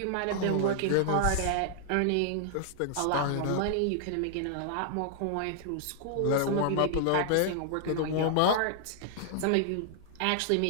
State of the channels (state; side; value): different; both; correlation -0.01